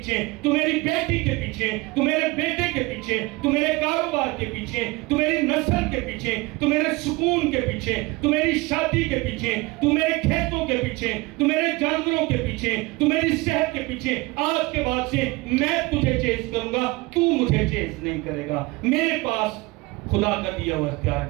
تو میری بیٹی کے پیچھے، تو میرے بیٹے کے پیچھے، تو میرے کاروبار کے پیچھے، تو میری نسل کے پیچھے، تو میرے سکون کے پیچھے، تو میری شادی کے پیچھے، تو میرے کھیتوں کے پیچھے، تو میرے جانوروں کے پیچھے، تو میری صحت کے پیچھے، آج کے بعد سے میں تجھے چیز کروں گا، تو مجھے چیز نہیں کرے گا۔ میرے پاس خدا کا دیا ہوا اختیار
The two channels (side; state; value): left; quieter; 22.9 dB